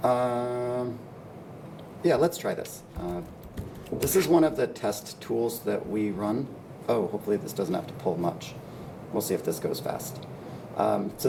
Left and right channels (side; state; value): both; identical; correlation 1.00